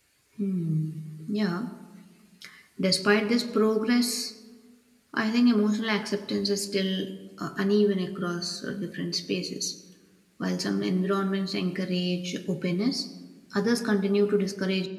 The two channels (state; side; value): identical; both; correlation 1.00